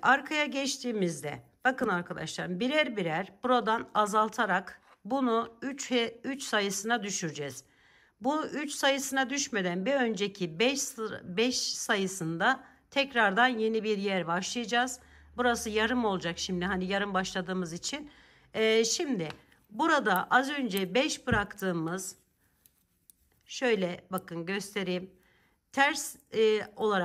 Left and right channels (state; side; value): identical; both; correlation 1.00